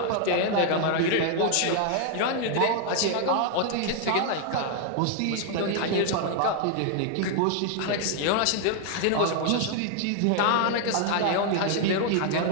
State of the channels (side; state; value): both; different; correlation 0.00